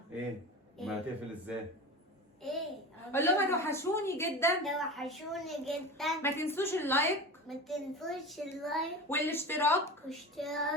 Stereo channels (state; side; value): normal; both; correlation 0.31